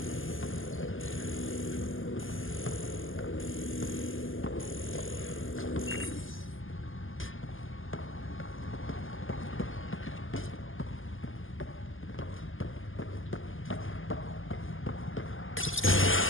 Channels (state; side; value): late; right; 0.58 ms